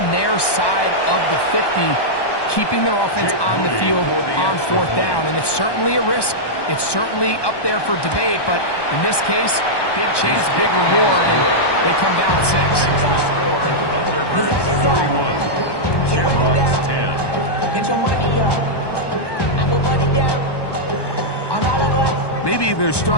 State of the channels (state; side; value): late; right; 1.1 ms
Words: their side of the 50, keeping their offense on the field on fourth down. And it's certainly a risk. It's certainly up there for debate, but in this case, big chance, big reward, and they come down with 6. Third 31. Shamrocks 10. Get your money up. I put money down on all of us. Maybe they're